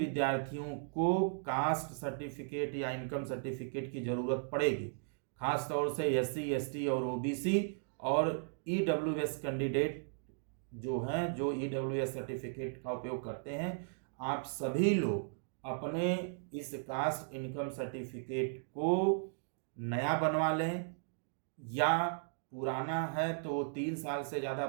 को कास्ट सर्टिफिकेट या इनकम सर्टिफिकेट की ज़रूरत पड़ेगी, खास तौर से SC ST और OBC और EWS कैंडिडेट जो हैं, जो EWS सर्टिफिकेट का उपयोग करते हैं, आप सभी लोग अपने इस कास्ट इनकम सर्टिफिकेट को नया बनवा लें, या पुराना है तो 3 साल से ज़्यादा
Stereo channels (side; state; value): left; silent; digital silence